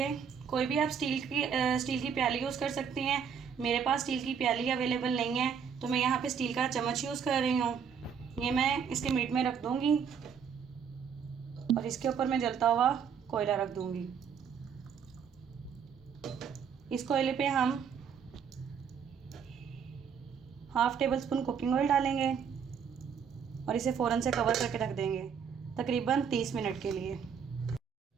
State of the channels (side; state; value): left; quieter; 7.1 dB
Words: कोई भी आप स्टील की प्याली यूज़ कर सकते हैं। मेरे पास स्टील की प्याली अवेलेबल नहीं है तो मैं यहाँ पे स्टील का चम्मच यूज़ कर रही हूँ। ये मैं इसके मीट में रख दूँगी और इसके ऊपर मैं जलता हुआ कोयला रख दूँगी। इस कोयले पे हम half table spoon cooking oil डालेंगे और इसे फ़ौरन से कवर करके रख देंगे तकरीबन 30 मिनट के लिए।